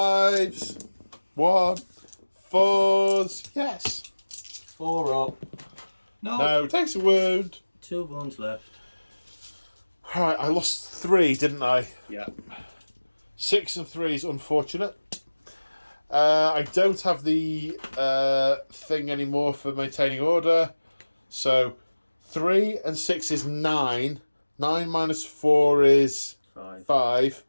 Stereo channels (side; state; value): both; inverted; correlation -1.00